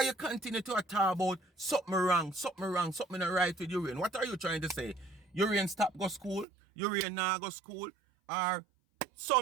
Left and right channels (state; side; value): drops out; left; at 6.5 s